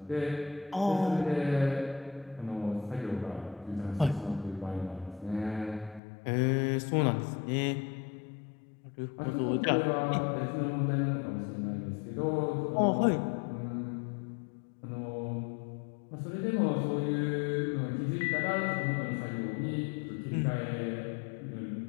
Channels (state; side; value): drops out; right; at 6.0 s